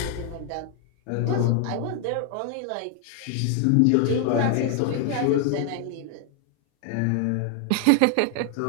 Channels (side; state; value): both; different; correlation 0.00